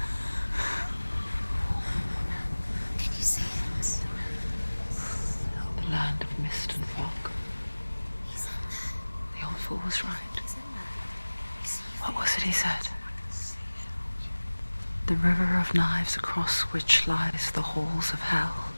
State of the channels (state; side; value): inverted; both; correlation -1.00